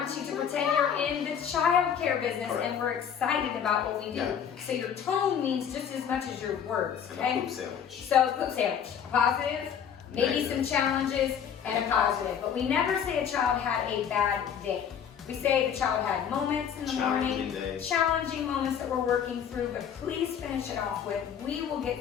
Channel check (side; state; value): right; quieter; 8.2 dB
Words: you to pretend you're in the child care business and we're excited about what we do. Yeah. So your tone means just as much as your words. And Okay? a poop sandwich. So poop sandwich, positive, maybe Negative. some challenges, and a positive. But we never say a child had a bad day. We say the child had moments in the morning, challenging moments that we're working through, but please finish it off with, we will